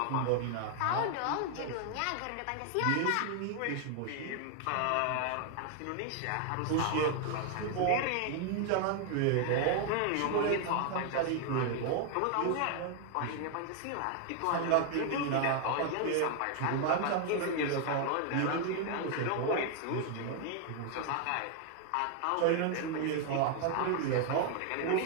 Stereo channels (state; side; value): different; both; correlation 0.00